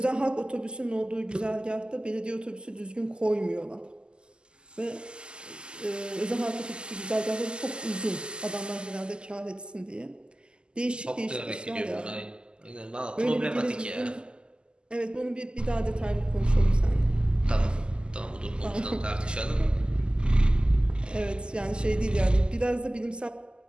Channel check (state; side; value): late; left; 0.048 ms